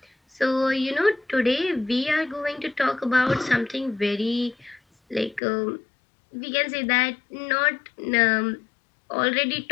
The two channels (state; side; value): drops out; right; at 5.4 s